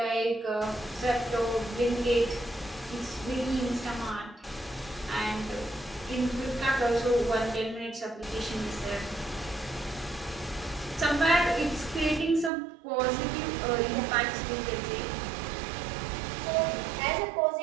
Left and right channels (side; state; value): left; drops out; at 12.5 s